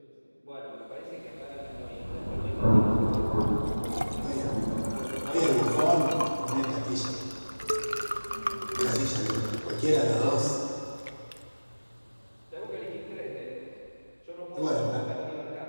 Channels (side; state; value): both; inverted; correlation -1.00